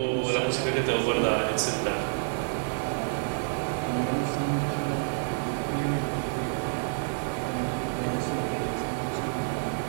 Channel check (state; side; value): silent; left; 59 dB below the other